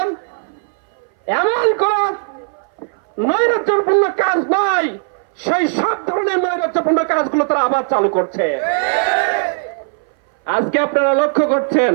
এমন কোন নৈরাজ্যপূর্ণ কাজ নয়, সেই সব ধরনের নৈরাজ্যপূর্ণ কাজগুলো তারা আবার চালু করছে। আজকে আপনারা লক্ষ্য করছেন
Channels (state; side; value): silent; left; 61 dB below the other